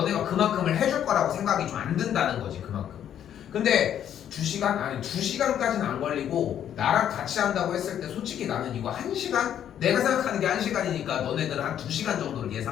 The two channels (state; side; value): quieter; right; 10.0 dB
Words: 그만큼을 해줄 거라고 생각이 좀 안 든다는 거지 그만큼. 근데 2시간? 아니 2시간까지는 안 걸리고 나랑 같이 한다고 했을 때 솔직히 나는 이거 1시간? 내가 생각하는 게 1시간이니까 너네들은 한 2시간 정도를